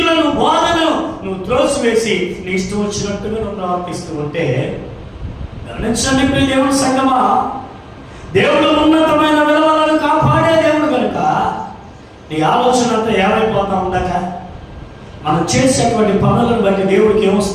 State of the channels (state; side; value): identical; both; correlation 1.00